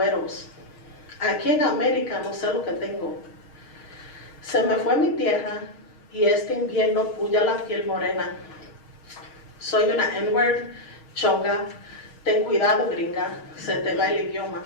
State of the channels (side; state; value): right; late; 6.4 ms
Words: Aquí en América no sé lo que tengo. Se me fue mi tierra y este invierno puya la piel morena. Soy una N-word, chonga, ten cuidado gringa, se te va el idioma.